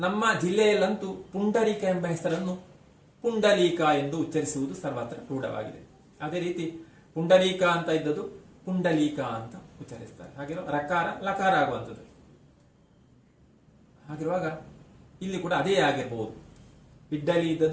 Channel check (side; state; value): both; identical; correlation 1.00